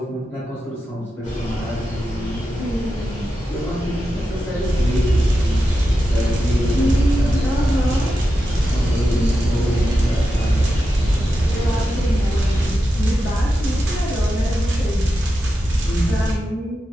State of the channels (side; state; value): both; normal; correlation 0.89